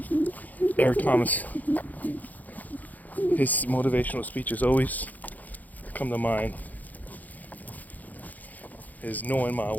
Eric Thomas, his motivational speeches always come to mind, is knowing my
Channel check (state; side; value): late; right; 0.081 ms